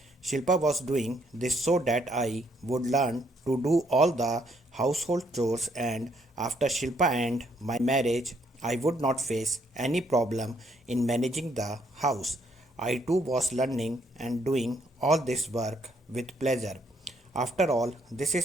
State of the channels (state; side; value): normal; both; correlation 0.70